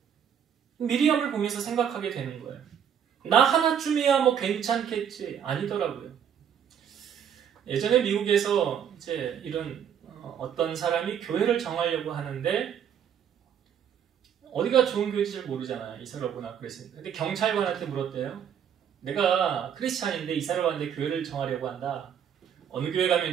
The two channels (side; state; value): left; quieter; 8.5 dB